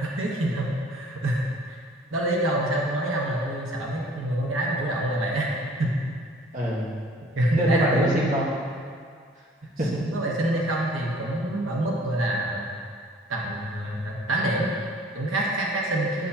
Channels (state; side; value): normal; both; correlation 0.53